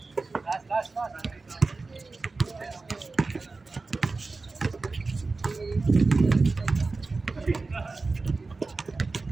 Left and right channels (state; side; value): quieter; left; 3.8 dB